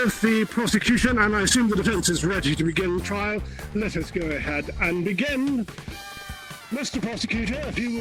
the prosecution and I assume the defense is ready to begin trial. Let us go ahead and begin. Mr. Prosecutor, if you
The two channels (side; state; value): both; identical; correlation 1.00